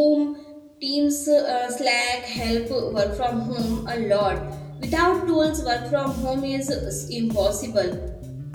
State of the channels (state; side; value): identical; both; correlation 1.00